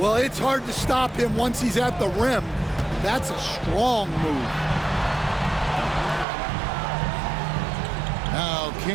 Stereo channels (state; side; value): drops out; left; at 6.2 s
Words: it's hard to stop him once he's at the rim. That's a strong move. Now